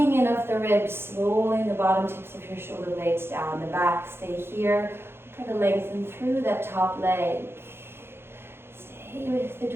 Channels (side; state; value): left; late; 0.11 ms